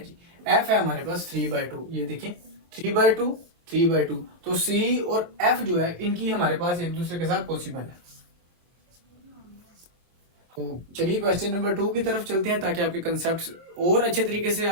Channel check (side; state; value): left; late; 25 ms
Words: जी, एफ है हमारे पास 3/2। ये देखें 3/2 3/2, तो सी और एफ जो है इनकी हमारे पास एक दूसरे के साथ पॉसिबल है। तो चलिए क्वेश्चन नंबर 2 की तरफ चलते हैं ताकि आपके कंसेप्ट और अच्छे तरीके से